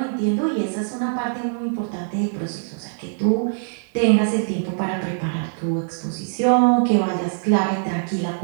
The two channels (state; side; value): silent; left; digital silence